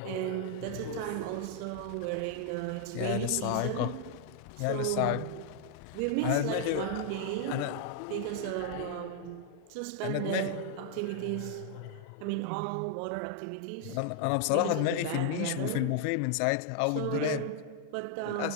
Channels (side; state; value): both; different; correlation 0.00